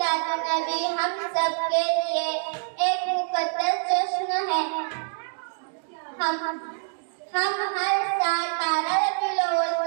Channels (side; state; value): left; silent; digital silence